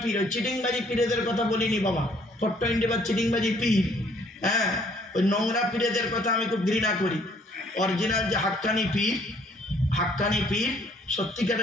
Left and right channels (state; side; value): normal; both; correlation 0.62